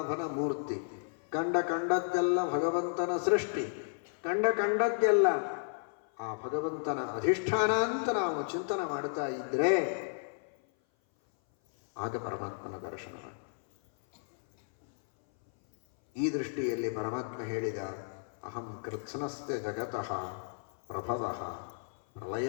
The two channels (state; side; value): silent; right; 56 dB below the other